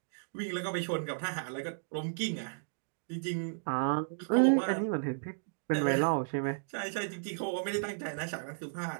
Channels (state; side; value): silent; left; digital silence